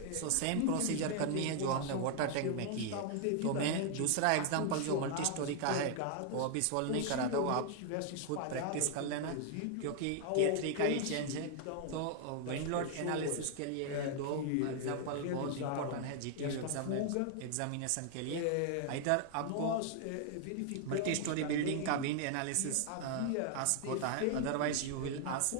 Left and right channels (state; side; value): different; both; correlation 0.00